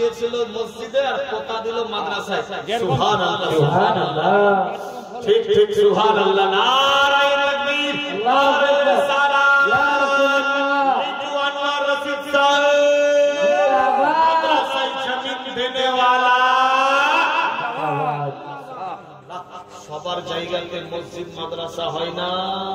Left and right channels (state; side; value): identical; both; correlation 1.00